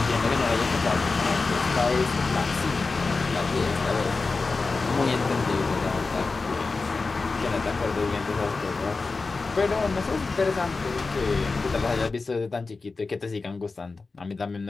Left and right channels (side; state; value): right; quieter; 4.0 dB